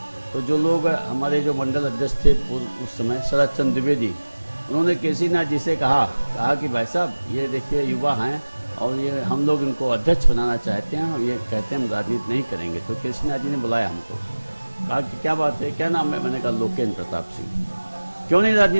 तो जो लोग हमारे जो मंडल अध्यक्ष थे उस समय शरद चंद्र द्विवेदी, उन्होंने केसी नाथ जी से कहा कि भाई साहब ये देखिए युवा हैं, और ये हम लोग इनको अध्यक्ष बनाना चाहते हैं, और ये कहते हैं हम राजनीति नहीं करेंगे। तो केसी नाथ जी ने बुलाया हमको, कहा कि क्या बात है, क्या नाम है? मैंने कहा लोकेंद्र प्रताप सिंह। क्यों नहीं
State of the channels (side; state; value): both; inverted; correlation -1.00